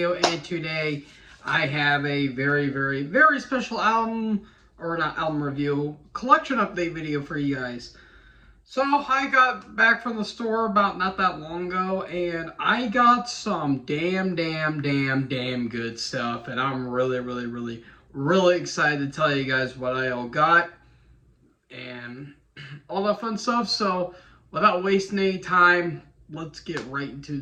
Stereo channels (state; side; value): identical; both; correlation 1.00